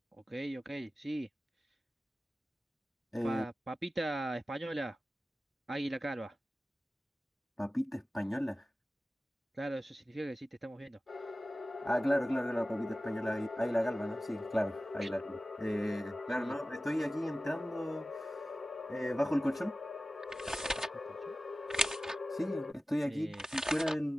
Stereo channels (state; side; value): normal; both; correlation 0.95